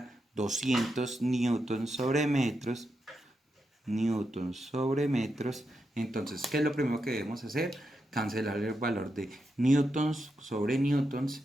200 newtons sobre metros, entonces, ¿qué es lo primero que debemos hacer? Cancelar el valor de newtons sobre newtons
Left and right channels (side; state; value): both; normal; correlation 0.86